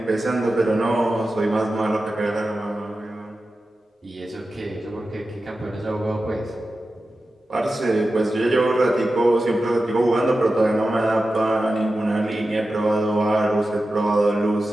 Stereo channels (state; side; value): normal; both; correlation 0.93